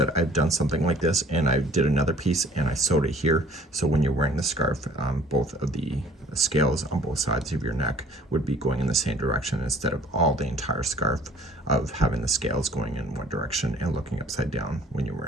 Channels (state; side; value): normal; both; correlation 0.53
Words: I've done something like this, and I did another piece and I sewed it here. So when you're wearing the scarf, both of the scales on both sides of your neck would be going in the same direction, instead of all the entire scarf of having the scales going in one direction and looking upside down when you're